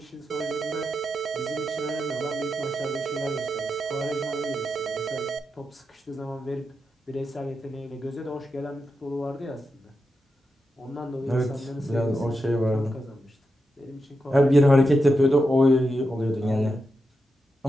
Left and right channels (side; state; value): both; normal; correlation 0.87